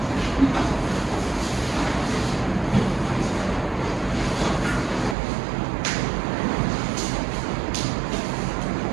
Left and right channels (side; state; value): left; drops out; at 5.2 s